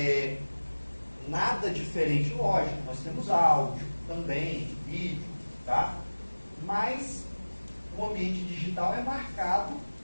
nada diferente, lógico, nós temos áudio também, vídeo, tá? Mas o ambiente digital é marcado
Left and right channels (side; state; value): both; inverted; correlation -1.00